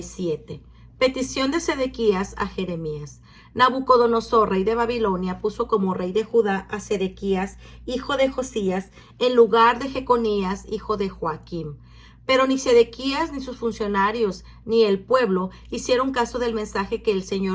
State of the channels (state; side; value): identical; both; correlation 1.00